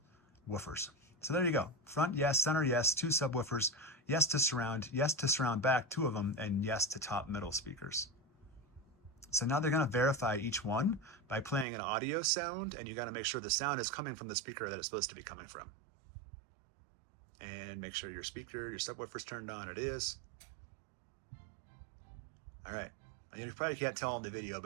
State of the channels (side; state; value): left; drops out; at 11.7 s